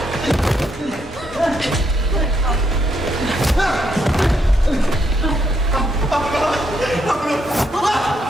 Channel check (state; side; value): normal; both; correlation 0.76